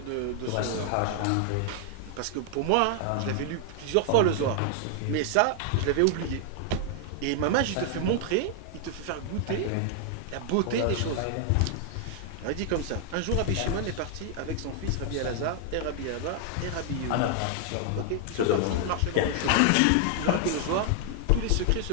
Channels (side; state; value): both; different; correlation 0.00